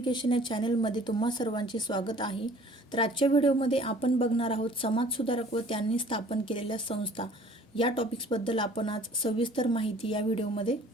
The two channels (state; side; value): normal; both; correlation 0.52